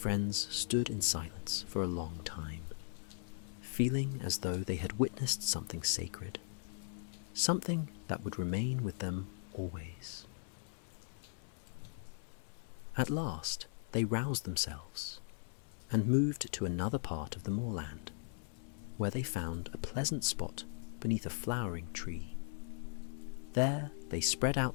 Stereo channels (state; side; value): silent; right; 52 dB below the other